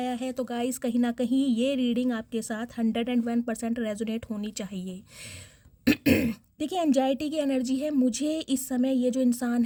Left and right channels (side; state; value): both; identical; correlation 1.00